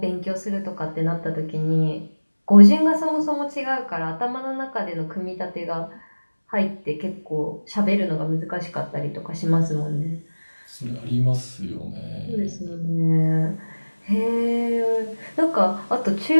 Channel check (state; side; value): inverted; both; correlation -1.00